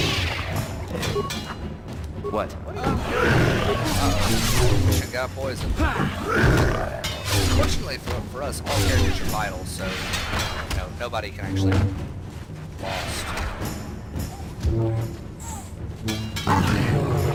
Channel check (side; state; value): both; identical; correlation 1.00